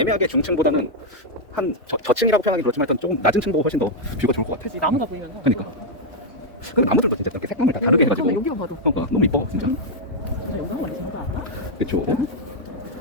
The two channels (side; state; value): both; normal; correlation -0.02